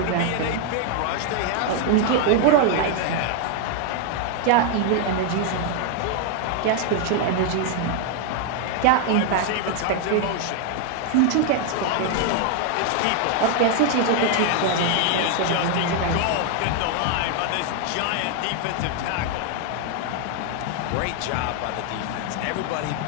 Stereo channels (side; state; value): both; different; correlation 0.01